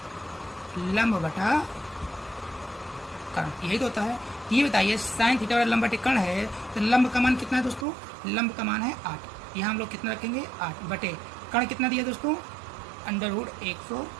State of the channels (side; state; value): left; drops out; at 7.9 s